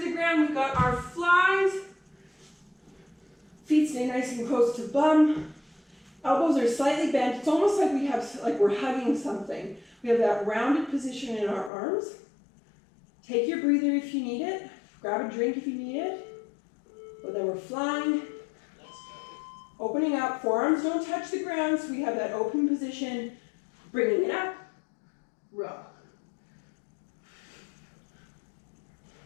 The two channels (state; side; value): drops out; right; at 11.7 s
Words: the ground. We got our flies. Feet stay nice and close to bum. Elbows are slightly bent. It's almost like we're hugging something. We have that rounded position in our arms. Take your breather if you need it. Grab a drink if you need it. But then we're flying. Let's go. Opening up. Forearms don't touch the ground, so we have that open position. Bringing it up. Row.